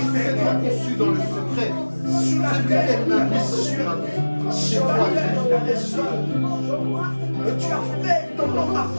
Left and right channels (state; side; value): inverted; both; correlation -1.00